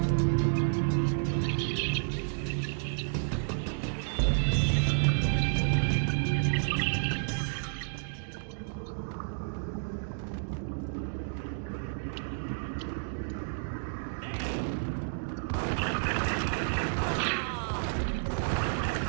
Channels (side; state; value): left; silent; digital silence